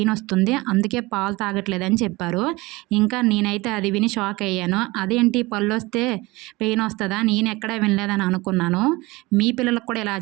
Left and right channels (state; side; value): quieter; left; 22.1 dB